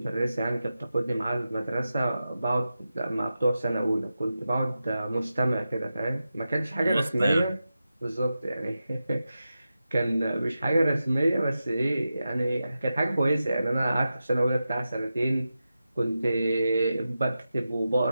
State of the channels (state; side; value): inverted; both; correlation -0.91